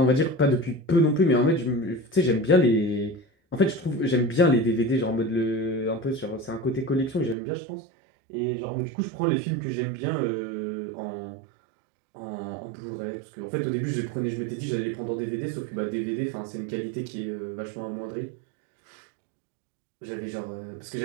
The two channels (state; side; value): drops out; left; at 7.4 s